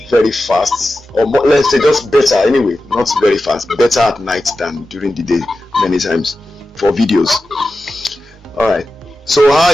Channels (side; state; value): both; normal; correlation 0.93